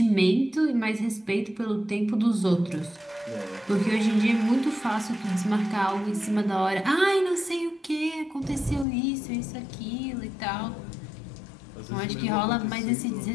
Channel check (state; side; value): drops out; right; at 8.8 s